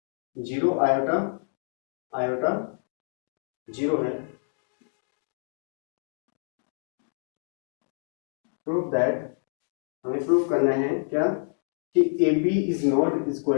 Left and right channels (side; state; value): right; silent; digital silence